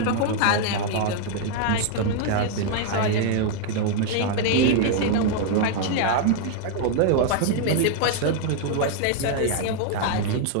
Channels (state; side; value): different; both; correlation 0.00